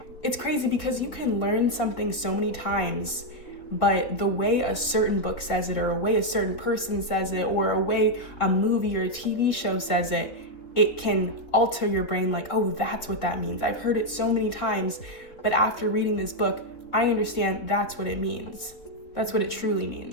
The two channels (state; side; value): late; right; 3.8 ms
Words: It's crazy because you can learn something so many times, but the way a certain book says it, or a way a certain person says it, or a way a movie or a TV show says it, it can alter your brain like, oh, that's what that means. I've heard it so many times, but after reading this book, I understand that's what it means. That's what it truly